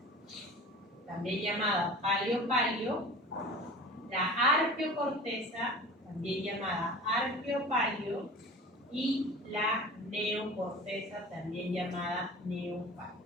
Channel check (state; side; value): normal; both; correlation 0.39